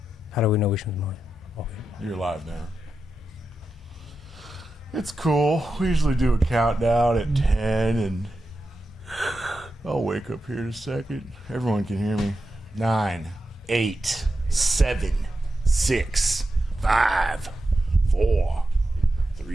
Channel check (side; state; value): both; normal; correlation 0.89